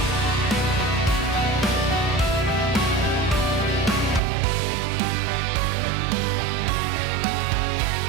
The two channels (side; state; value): left; drops out; at 4.2 s